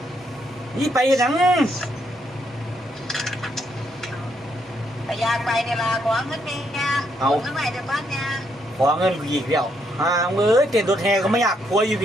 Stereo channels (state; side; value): normal; both; correlation 0.75